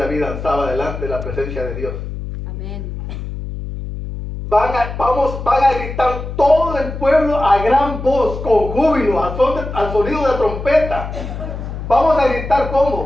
danzaba delante de la presencia de Dios. Amén. Van a gritar todo el pueblo a gran voz, con júbilo, al sonido de trompeta. Vamos a gritar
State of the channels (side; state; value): left; noise; hum, 7 dB below the sound